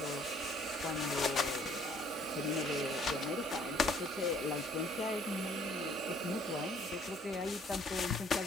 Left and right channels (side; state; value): both; normal; correlation 0.60